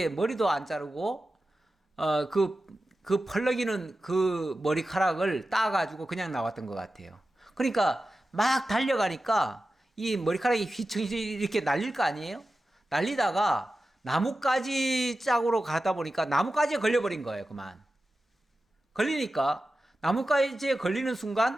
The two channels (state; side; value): normal; both; correlation 0.93